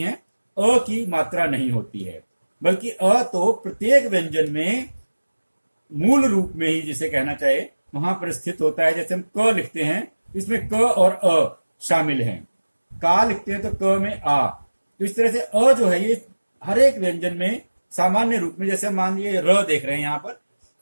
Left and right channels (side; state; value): both; inverted; correlation -1.00